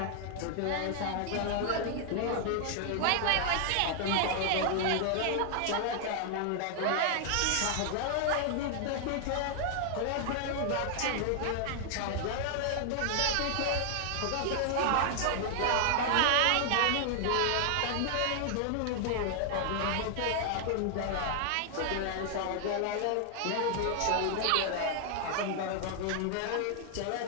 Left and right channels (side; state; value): both; different; correlation 0.00